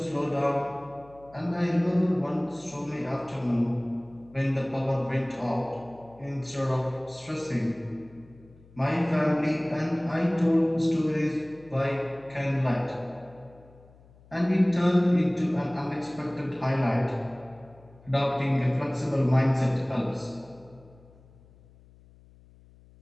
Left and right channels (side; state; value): left; noise; hum, 26 dB below the sound